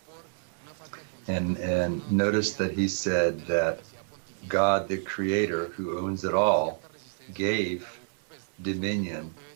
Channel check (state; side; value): silent; left; 59 dB below the other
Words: And notice that he said that God, the creator who owns it all, gave dominion